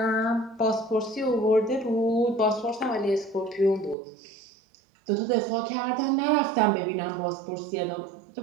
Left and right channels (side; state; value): left; drops out; at 4.0 s